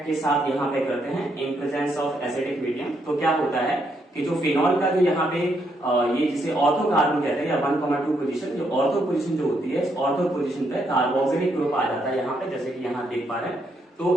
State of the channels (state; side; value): normal; both; correlation 0.76